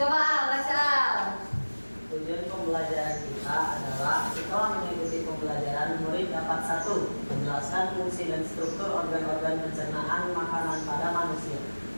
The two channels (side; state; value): both; inverted; correlation -1.00